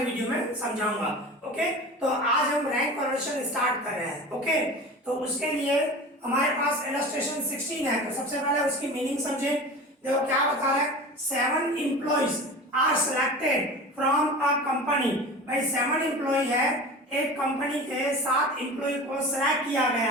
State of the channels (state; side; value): normal; both; correlation 0.34